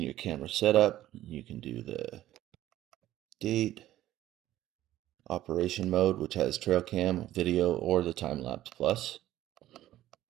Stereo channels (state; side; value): quieter; left; 14.0 dB